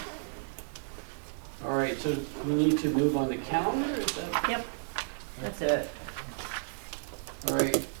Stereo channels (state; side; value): silent; left; 56 dB below the other